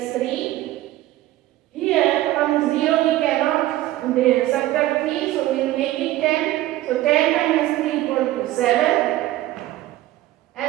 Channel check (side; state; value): left; quieter; 15.6 dB